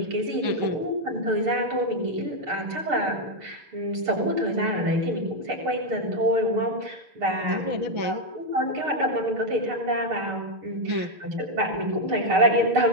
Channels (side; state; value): left; late; 6.6 ms